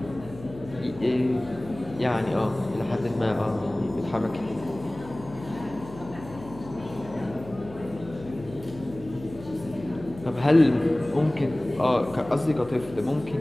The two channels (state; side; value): noise; left; hum, 16 dB below the sound